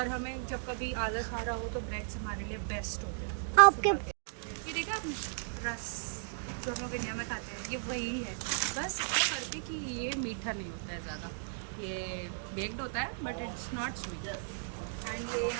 हमें जब कभी आलस आ रहा हो तो ब्रेड्स हमारे लिए बेस्ट होते हैं। आपके ये देखा आपने रस जो हम लोग इंडिया में खाते हैं, ये वही है, बस इतना करके कि ये मीठा नहीं होता है ज़्यादा, ये बेक्ड होता है but it's not sweet. And ये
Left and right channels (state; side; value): silent; left; digital silence